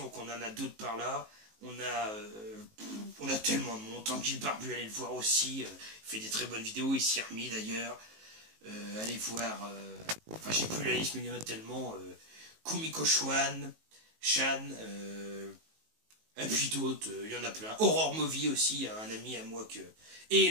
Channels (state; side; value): late; left; 19 ms